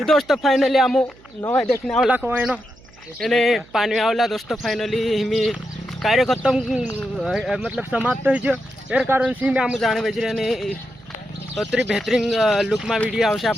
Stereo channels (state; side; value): noise; right; hum, 26 dB below the sound